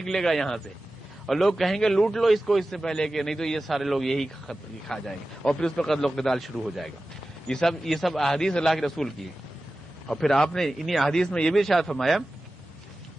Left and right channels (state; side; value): normal; both; correlation 0.95